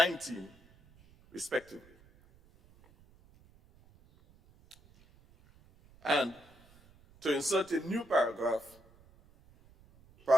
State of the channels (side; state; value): right; noise; rumble, 28 dB below the sound